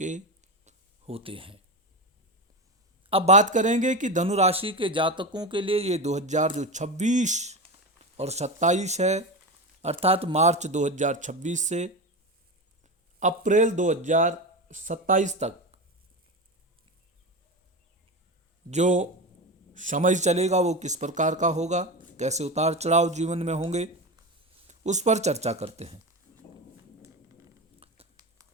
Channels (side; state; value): both; normal; correlation 0.21